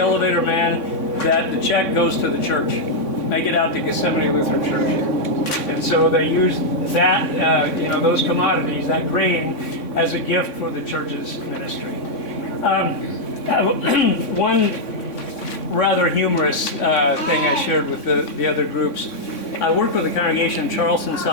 man that the check goes to the church. Make it out to Gethsemane Lutheran Church. And so they used that, those commodities, that grain, as a gift for the church's ministry. One rather humorous thing I shared with the other groups. I worked with a congregation in Charleston,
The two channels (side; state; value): right; late; 3.6 ms